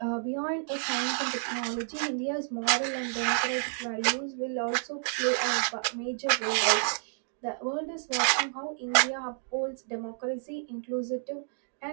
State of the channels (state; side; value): silent; left; digital silence